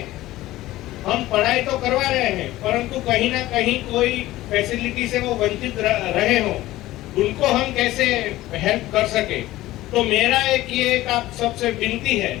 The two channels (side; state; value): right; quieter; 16.4 dB